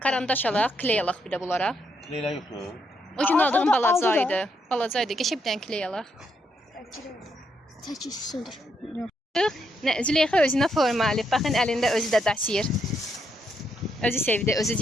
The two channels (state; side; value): normal; both; correlation 0.78